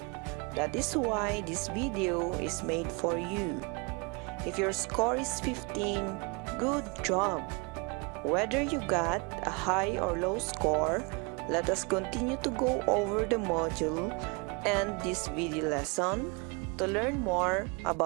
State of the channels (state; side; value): quieter; left; 30.6 dB